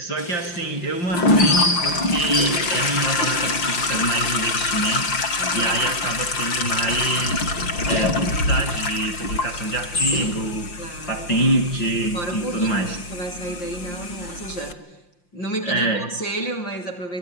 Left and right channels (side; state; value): right; late; 5.7 ms